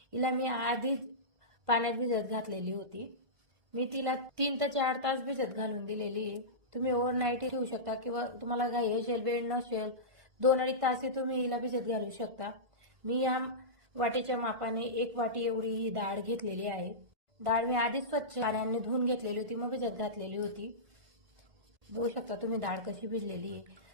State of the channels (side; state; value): left; late; 1.8 ms